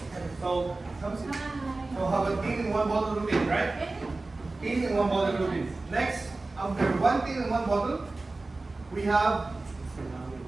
So, so have a teen in one bottle routine, right? Teen in one bottle routine. Next, after one teen in one bottle, we have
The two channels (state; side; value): quieter; left; 3.3 dB